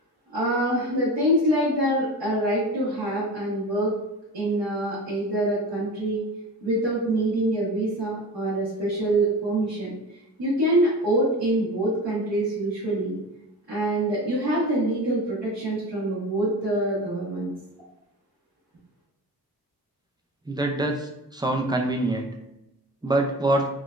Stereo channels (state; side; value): normal; both; correlation 0.32